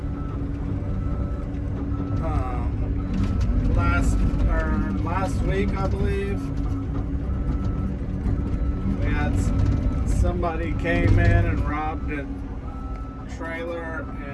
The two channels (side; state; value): both; identical; correlation 1.00